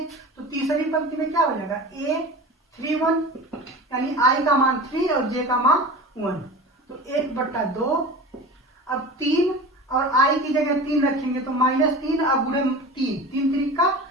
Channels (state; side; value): normal; both; correlation 0.34